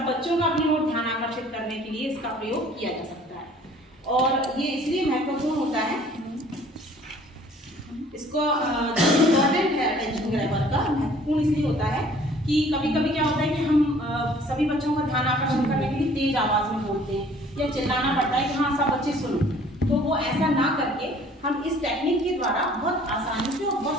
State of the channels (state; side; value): normal; both; correlation 0.54